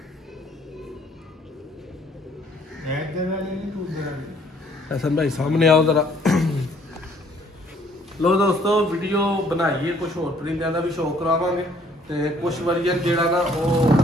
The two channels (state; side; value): normal; both; correlation 0.62